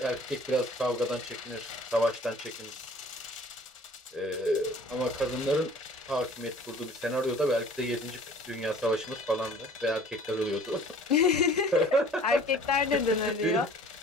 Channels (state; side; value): normal; both; correlation 0.49